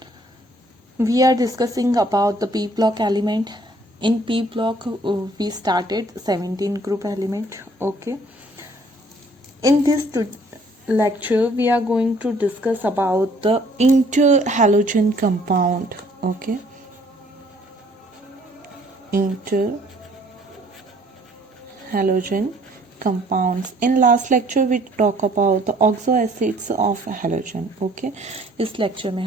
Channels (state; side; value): normal; both; correlation 0.60